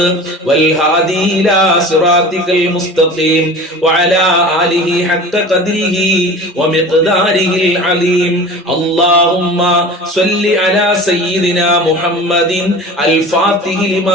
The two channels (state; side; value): normal; both; correlation 0.37